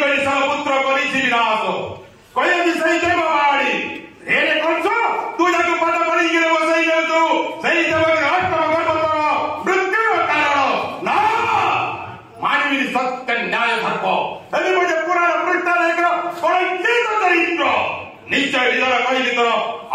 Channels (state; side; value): identical; both; correlation 1.00